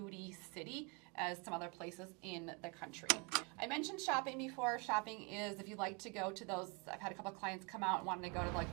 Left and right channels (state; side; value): quieter; left; 31.9 dB